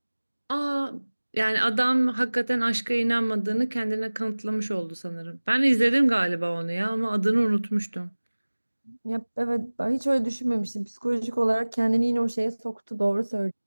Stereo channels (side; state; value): both; inverted; correlation -1.00